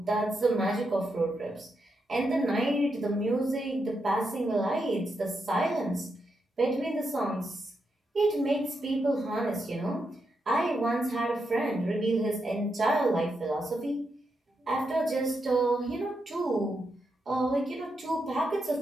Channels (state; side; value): normal; both; correlation 0.84